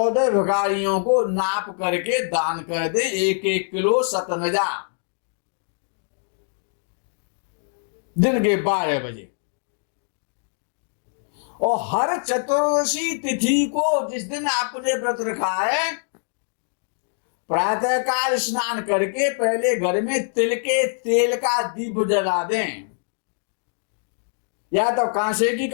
भिखारियों को नाप करके दान कर दे 1-1 किलो सतनजा, दिन के 12 बजे। और हर चतुर्दशी तिथि को, जिस दिन आपने व्रत रखा है, प्रातःकाल स्नान करके पहले घर में तिल के तेल का दीप जला दें, या तो कांसे की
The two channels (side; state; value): right; silent; 63 dB below the other